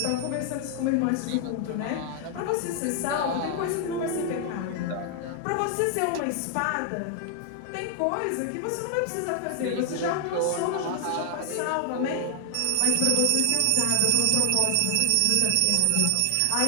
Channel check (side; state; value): both; different; correlation 0.00